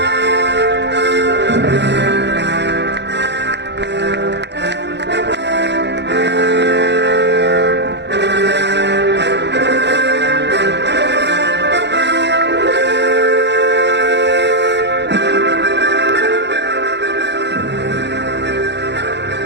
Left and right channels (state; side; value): late; left; 0.50 ms